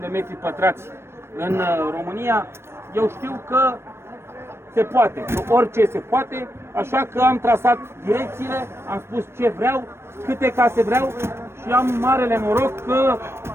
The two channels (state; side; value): late; left; 0.12 ms